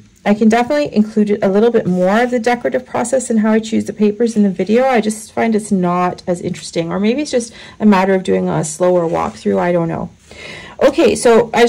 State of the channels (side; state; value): both; identical; correlation 1.00